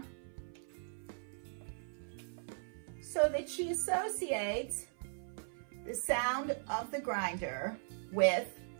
so that she associates the sound of the grinder with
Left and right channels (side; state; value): left; silent; 52 dB below the other